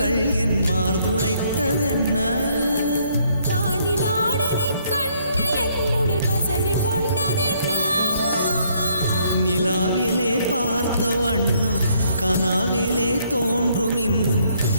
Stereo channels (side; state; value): both; inverted; correlation -0.68